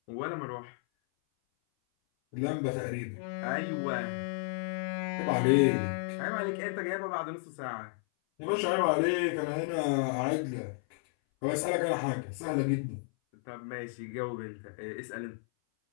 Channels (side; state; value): right; silent; 56 dB below the other